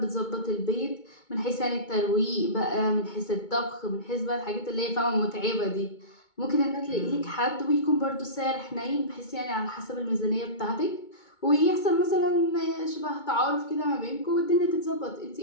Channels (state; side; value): late; right; 2.2 ms